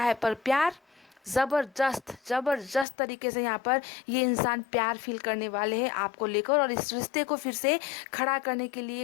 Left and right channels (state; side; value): drops out; right; at 2.9 s